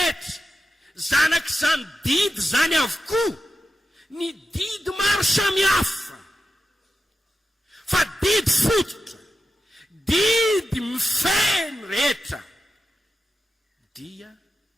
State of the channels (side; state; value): both; normal; correlation 0.90